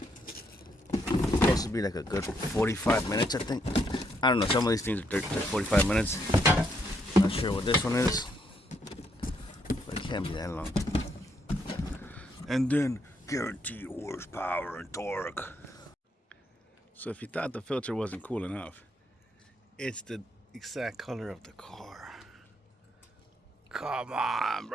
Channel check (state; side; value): normal; both; correlation 0.75